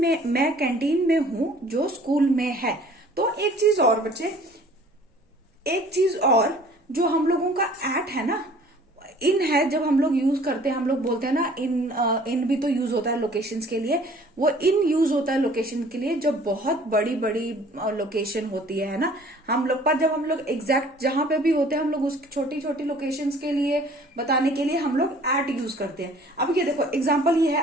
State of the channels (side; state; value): both; normal; correlation 0.52